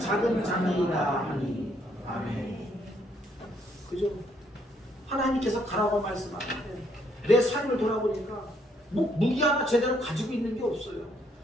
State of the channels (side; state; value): both; normal; correlation 0.70